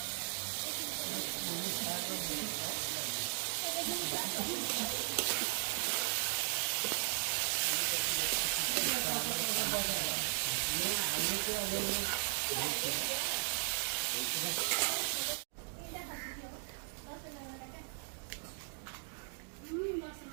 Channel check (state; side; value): silent; left; digital silence